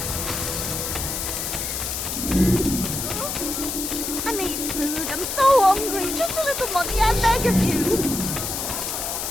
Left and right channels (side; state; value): left; noise; hiss, 3 dB below the sound